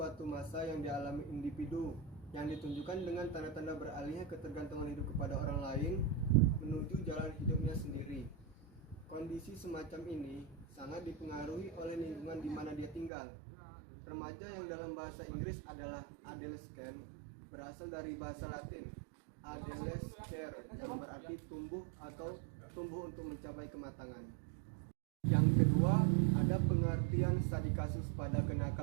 masa yang dialami individu yang ditunjukkan dengan tanda-tanda beralihnya ketergantungan hidup kepada orang lain menuju jalan hidupnya sendiri. Kondisi semacam ini sangat dipengaruhi oleh lingkungan di mana dia tinggal. Remaja yang dalam bahasa Inggris adalah adolescent berasal dari bahasa Latin adolescere yang berarti tumbuh atau tumbuh untuk mencapai kematangan. Yang kedua, ada pengertian studi kasus pada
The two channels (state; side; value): drops out; left; at 13.1 s